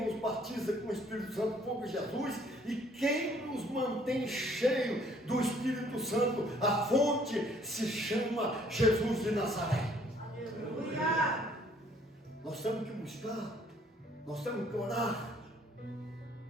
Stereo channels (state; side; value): normal; both; correlation 0.61